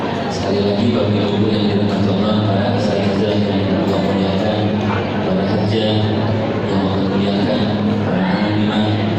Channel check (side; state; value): both; identical; correlation 1.00